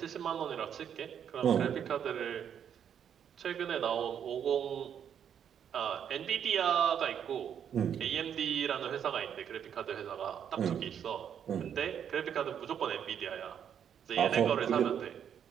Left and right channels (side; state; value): left; quieter; 8.6 dB